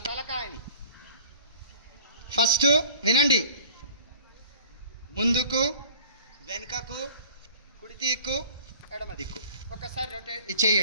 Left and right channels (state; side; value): inverted; both; correlation -0.48